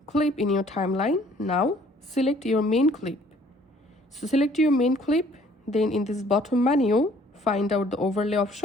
clip in your timeline, now select your main clip. So select your main clip, then in this bottom menu find out the overlay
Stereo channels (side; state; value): both; normal; correlation 0.58